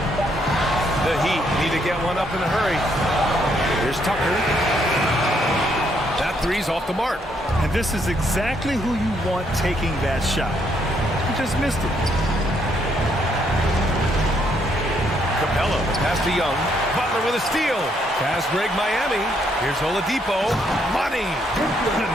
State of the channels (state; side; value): normal; both; correlation 0.72